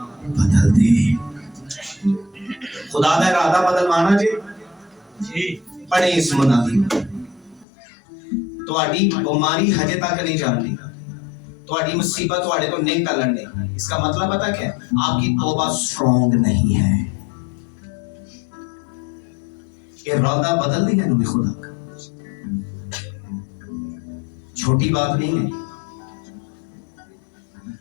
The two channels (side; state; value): right; drops out; at 7.7 s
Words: बदल दे। खुदा का इरादा बदलवाना जी पढ़े इस मुनादी। ਤੁਹਾਡੀ बीमारी हजे तक नहीं जानती, ਤੁਹਾਡੀ मुसीबत ਤੁਹਾਡੇ ਤੋਂ नहीं टलन दी। इसका मतलब पता क्या है? आपकी तौबा स्ट्रॉन्ग नहीं है। इरादा बदल दिया इन्होंने खुदा का, छोटी बात नहीं है।